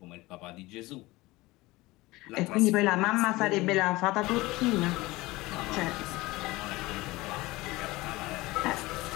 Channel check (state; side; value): quieter; right; 20.5 dB